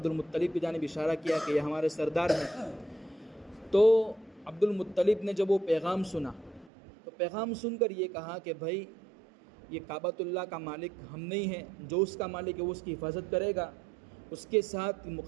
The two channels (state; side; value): drops out; left; at 6.7 s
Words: المطلب کی جانب اشارہ کیا کہ یہ ہمارے سردار ہیں۔ تو عبد المطلب نے جب وہ پیغام سنا تو پیغام سن کر یہ کہا کہ بھائی یہ کعبۃ اللہ کا مالک ہم نہیں ہیں، جو اس کا مالک ہے وہ اس کی حفاظت کرے گا، اس کے ساتھ